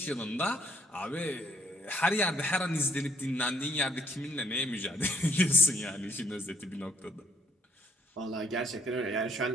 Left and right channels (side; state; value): both; normal; correlation 0.66